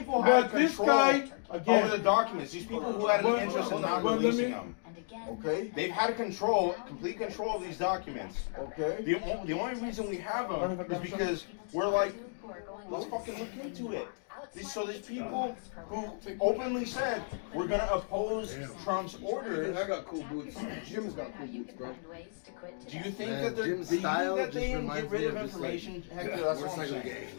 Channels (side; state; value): right; silent; digital silence